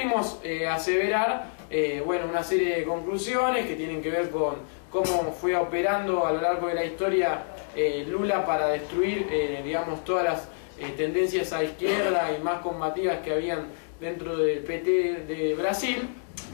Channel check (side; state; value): right; silent; digital silence